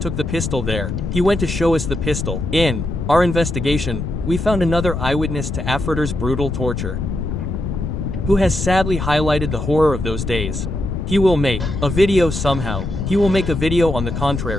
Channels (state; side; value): noise; left; rumble, 4 dB below the sound